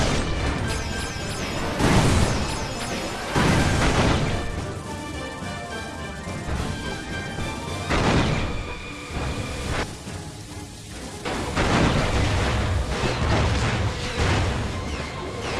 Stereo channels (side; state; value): both; identical; correlation 1.00